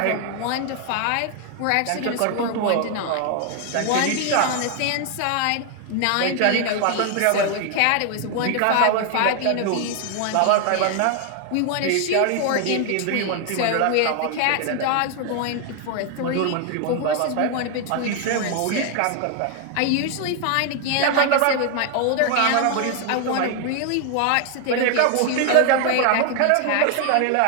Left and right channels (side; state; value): both; different; correlation 0.00